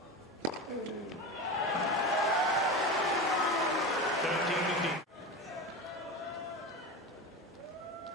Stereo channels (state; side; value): normal; both; correlation 0.25